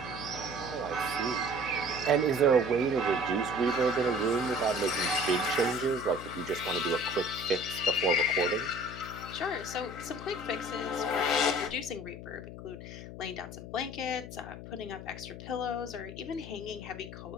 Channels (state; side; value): noise; left; hum, 11 dB below the sound